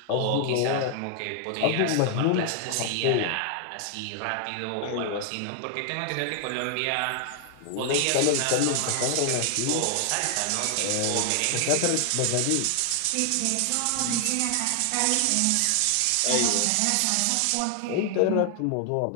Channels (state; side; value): different; both; correlation 0.00